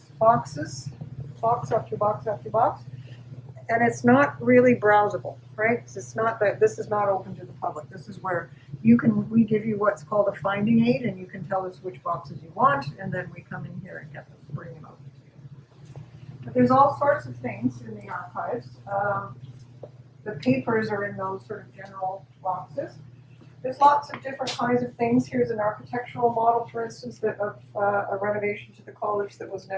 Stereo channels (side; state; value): both; identical; correlation 1.00